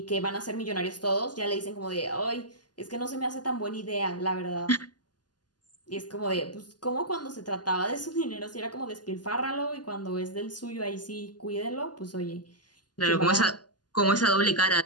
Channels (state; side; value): late; right; 0.70 ms